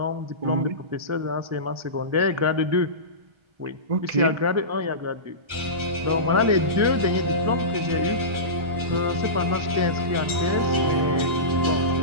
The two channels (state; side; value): late; left; 1.3 ms